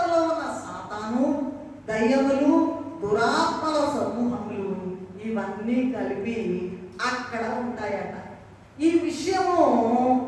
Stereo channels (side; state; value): both; identical; correlation 1.00